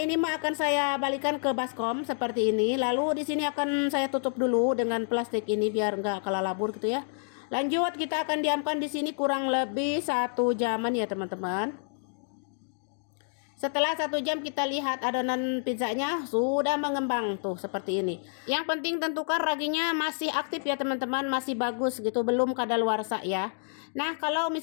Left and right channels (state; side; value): silent; right; digital silence